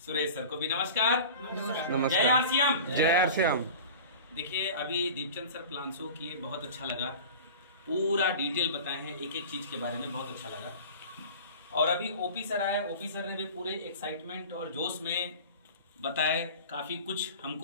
सर को भी नमस्कार। नमस्कार। जय आरसीएम। जय आरसीएम। देखिए, अभी दीपचंद सर प्लान शो किए, बहुत अच्छा लगा। पूरा डिटेल बताए हैं एक एक चीज के बारे में, बहुत अच्छा लगा। और अभी ओपी सर आए, ओपी सर ने भी पूरे एक्साइटमेंट और जोश में बताए, काफी कुछ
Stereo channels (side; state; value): both; inverted; correlation -0.37